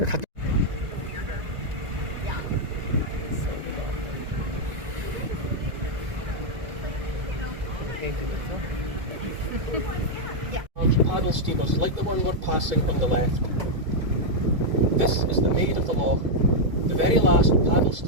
paddle steamers like the one we're passing on the left. This is the Maid of the Loch, the very last paddle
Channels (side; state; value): left; late; 2.3 ms